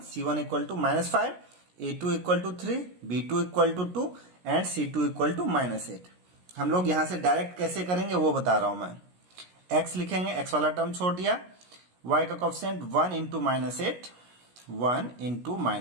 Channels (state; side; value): late; left; 17 ms